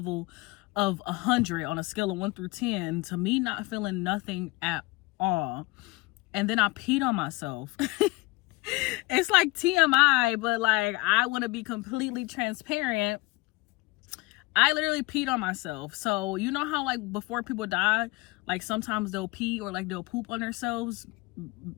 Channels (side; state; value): right; quieter; 23.4 dB